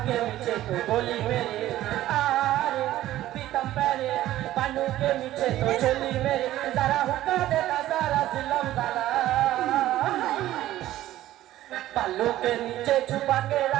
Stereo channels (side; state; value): left; quieter; 14.3 dB